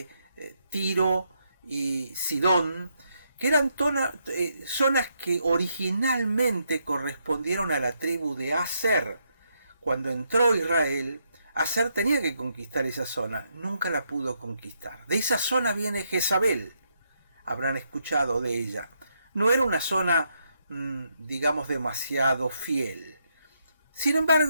Tiro y Sidón, que eran zonas que originalmente correspondieron a la tribu de Aser. Cuando entró Israel, Aser tenía que conquistar esa zona, nunca la pudo conquistar. De esa zona viene Jezabel, habrán escuchado de ella. No era una zona, digamos, demasiado fiel. Sin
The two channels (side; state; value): both; inverted; correlation -0.78